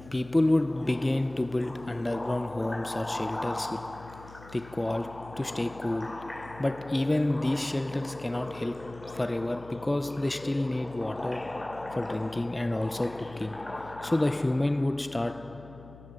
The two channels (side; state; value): left; noise; hum, 19 dB below the sound